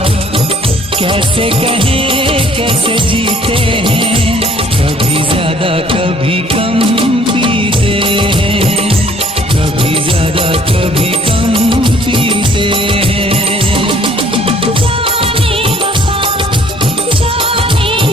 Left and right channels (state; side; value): normal; both; correlation 0.58